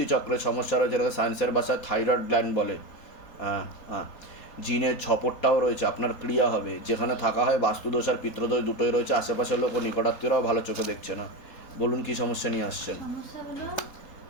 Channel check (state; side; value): late; right; 4.2 ms